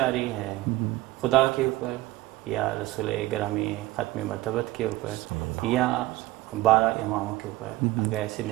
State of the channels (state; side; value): quieter; left; 17.9 dB